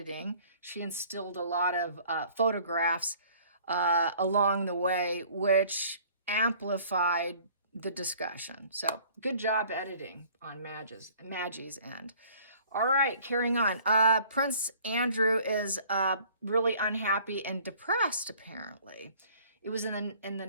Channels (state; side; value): inverted; both; correlation -0.53